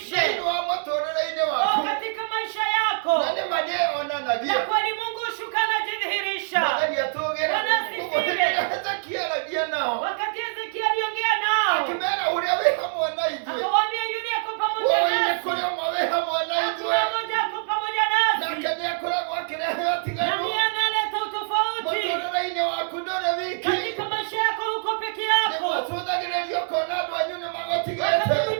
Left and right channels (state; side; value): silent; left; digital silence